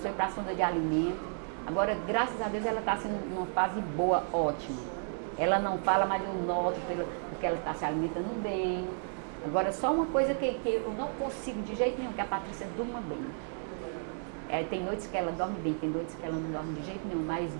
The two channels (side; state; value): left; silent; 56 dB below the other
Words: foi para a sonda de alimento. Agora, graças a Deus, ela está assim, numa fase boa, ótima. Ela não fala, mas eu noto porque ela está se alimentando bem. Agora, só uma coisa que eu não consigo de jeito nenhum, que a Patrícia durma bem. Tem noites que ela dorme bem, tem noites que ela não dorme de jeito nenhum, mas